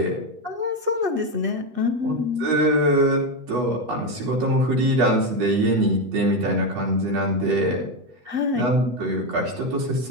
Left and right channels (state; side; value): late; left; 8.2 ms